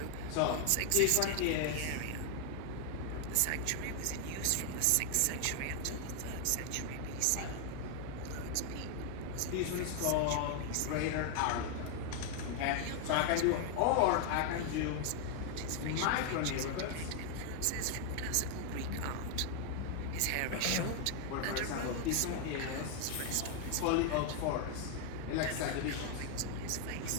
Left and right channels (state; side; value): different; both; correlation 0.00